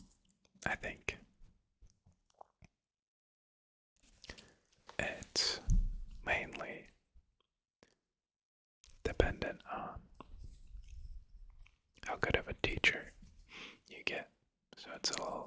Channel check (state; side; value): identical; both; correlation 1.00